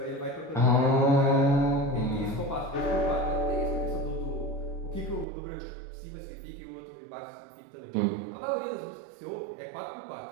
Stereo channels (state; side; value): drops out; left; at 5.2 s